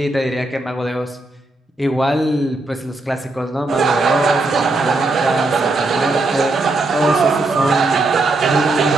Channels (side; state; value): left; quieter; 3.0 dB